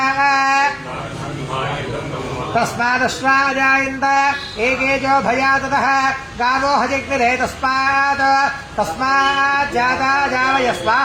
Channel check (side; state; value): both; identical; correlation 1.00